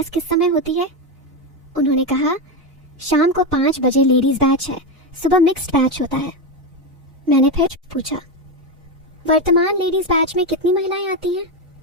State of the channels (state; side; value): normal; both; correlation 0.12